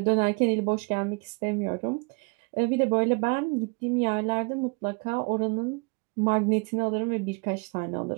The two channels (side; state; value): left; quieter; 31.2 dB